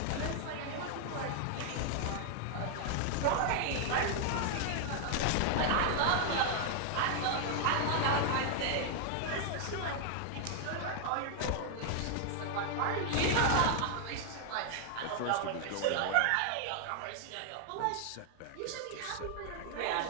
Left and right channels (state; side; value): different; both; correlation 0.00